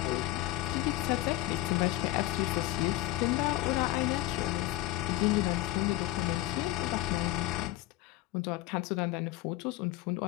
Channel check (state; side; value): quieter; right; 16.5 dB